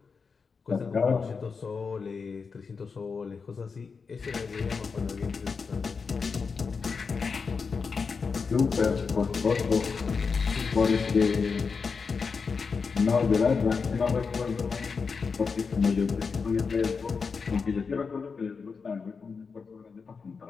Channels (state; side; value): quieter; right; 5.2 dB